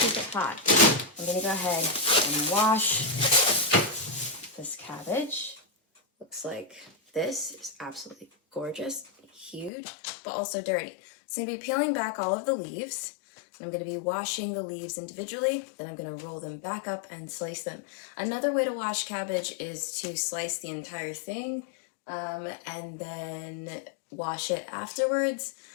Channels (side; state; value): right; drops out; at 9.7 s